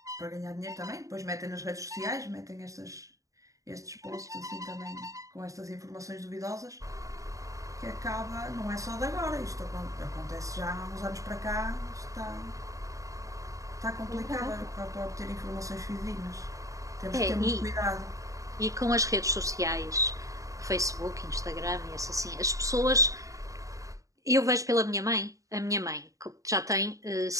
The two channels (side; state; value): left; late; 0.16 ms